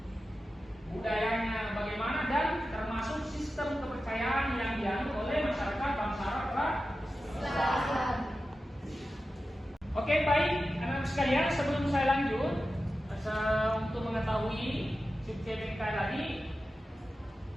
budayanya bagaimana, dan termasuk sistem kepercayaan yang dianut oleh masyarakat bangsa Arab pra-Islam. Oke, baik anak-anak sekalian, sebelum saya lanjut untuk mengetahui sub CPMK tadi,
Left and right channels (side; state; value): both; normal; correlation 0.93